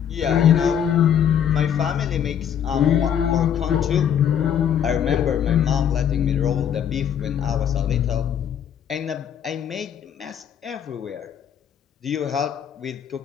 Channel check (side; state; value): right; quieter; 8.8 dB